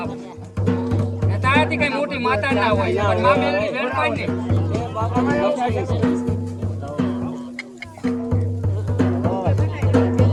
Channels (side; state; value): both; identical; correlation 1.00